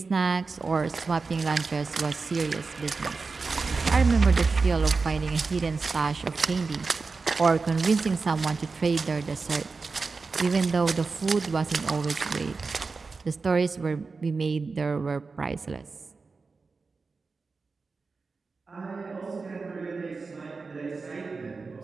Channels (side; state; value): left; quieter; 4.3 dB